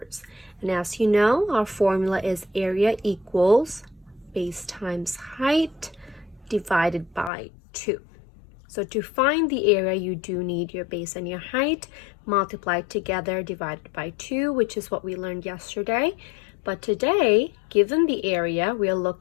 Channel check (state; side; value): drops out; right; at 7.3 s